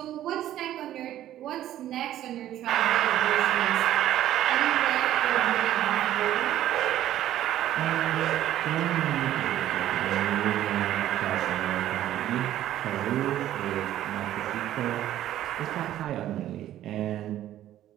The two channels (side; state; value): left; quieter; 12.7 dB